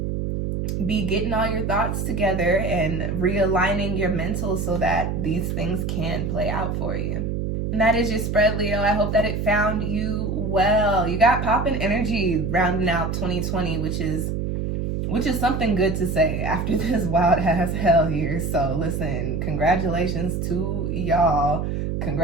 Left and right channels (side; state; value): right; noise; hum, 2 dB below the sound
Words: be getting all your thoughts together and realigning your mental so that these things can play out for you. And that is your spread, Leo. I hope that it found you well. You got popping energy rounding out 2020, which is something good to say after this wild ass hell year. So listen, congratulations to y'all.